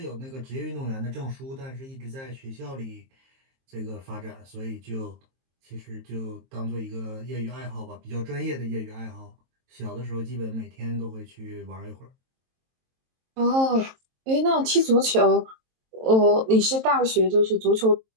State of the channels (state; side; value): late; left; 23 ms